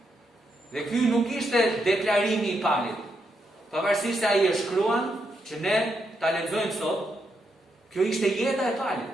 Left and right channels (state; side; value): normal; both; correlation 0.81